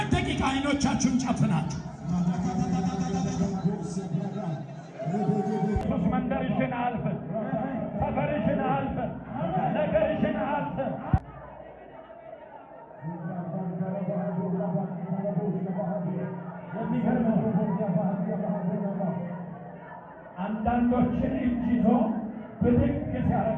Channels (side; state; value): both; identical; correlation 1.00